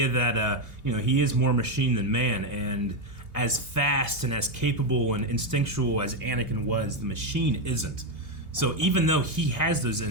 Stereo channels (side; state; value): left; late; 2.8 ms